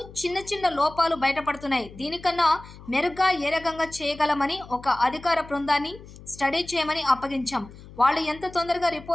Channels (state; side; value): noise; left; hum, 18 dB below the sound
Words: చిన్న లోపాలు బయటపడుతున్నాయి. దీనికన్నా మెరుగ్గా ఏ రకంగా చేయగలమని ఒక అధికార బృందాన్ని స్టడీ చేయమని అప్పగించాం. వాళ్ళు ఎంత తొందరగా